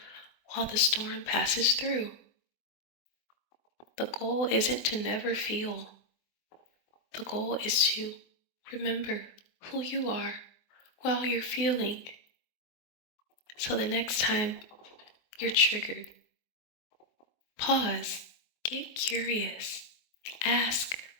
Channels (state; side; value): late; right; 24 ms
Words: while the storm passes through. The goal isn't to never feel. The goal is to remember who you are while you're feeling. So the next time you're triggered, pause, get curious, ask,